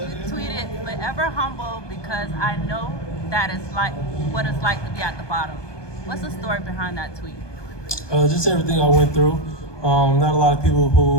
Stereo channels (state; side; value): late; right; 1.2 ms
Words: tweeted forever humble because I know that is like what it's like to be at the bottom. What's the story behind that tweet? Just everything I went through. Not a lot of people